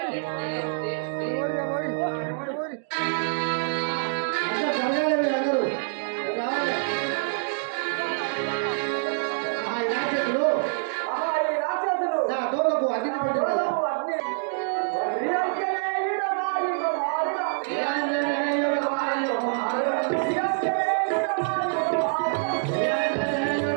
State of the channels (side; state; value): left; silent; digital silence